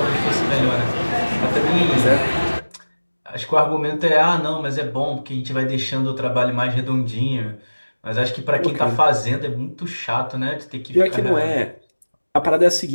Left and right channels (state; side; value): inverted; both; correlation -1.00